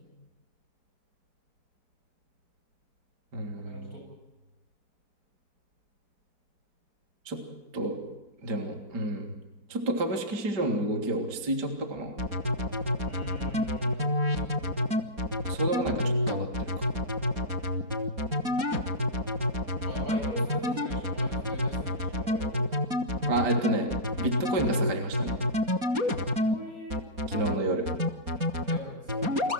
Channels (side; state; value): left; late; 4.2 ms